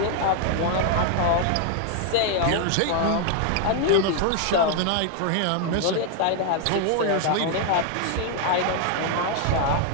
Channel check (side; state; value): both; different; correlation 0.00